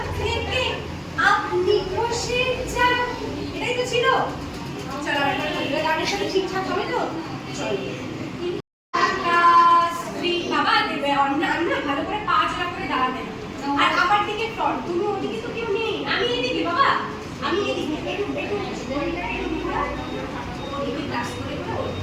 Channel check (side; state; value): both; identical; correlation 1.00